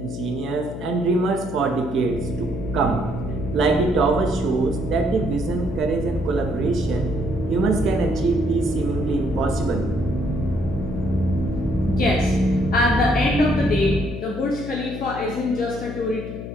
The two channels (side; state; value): left; noise; hum, 9 dB below the sound